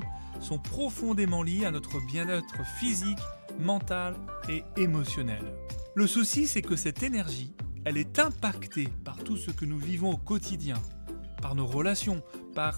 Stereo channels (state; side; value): inverted; both; correlation -1.00